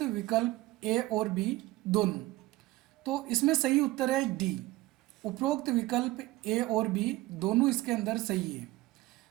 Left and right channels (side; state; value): left; quieter; 18.5 dB